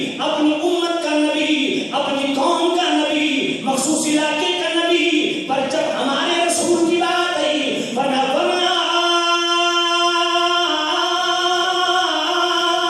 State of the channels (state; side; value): identical; both; correlation 1.00